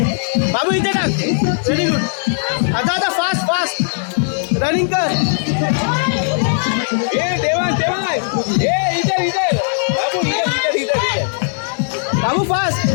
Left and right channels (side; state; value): right; silent; digital silence